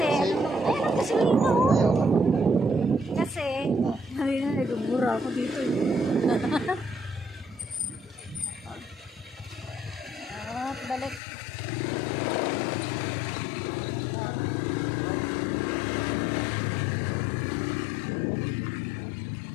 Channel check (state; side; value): drops out; right; at 11.2 s